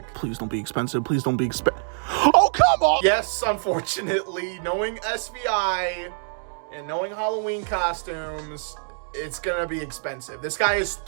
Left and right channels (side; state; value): left; silent; digital silence